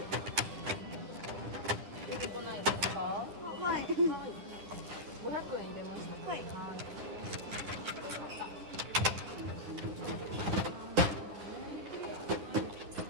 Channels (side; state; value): left; late; 10 ms